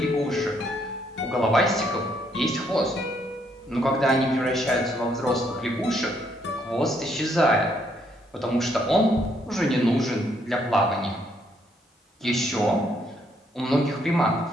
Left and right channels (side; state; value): both; normal; correlation 0.71